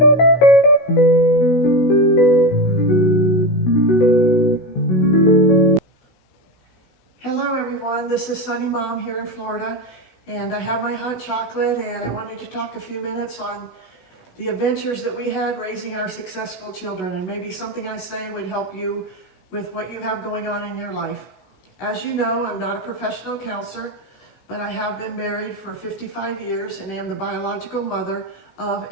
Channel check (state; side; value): late; right; 16 ms